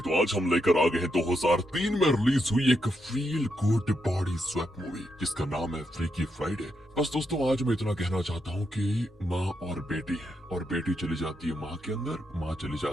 तो आज हम लेकर आ गए हैं 2003 में रिलीज हुई एक feel good body swap movie जिसका नाम है फ्रीकी फ्राइडे। बस दोस्तों आज मैं इतना कहना चाहता हूँ कि माँ और बेटी है और बेटी चली जाती है माँ के अंदर, माँ चली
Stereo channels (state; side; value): normal; both; correlation 0.82